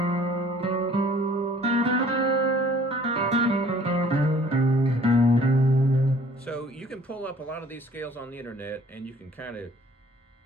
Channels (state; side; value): normal; both; correlation 0.54